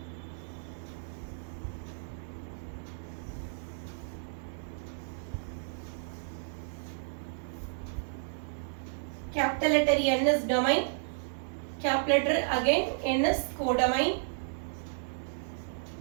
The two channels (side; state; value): left; silent; digital silence